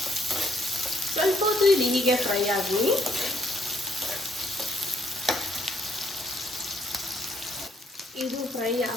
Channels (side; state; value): both; normal; correlation 0.68